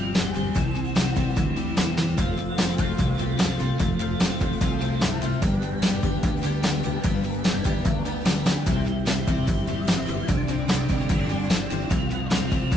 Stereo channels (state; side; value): normal; both; correlation 0.77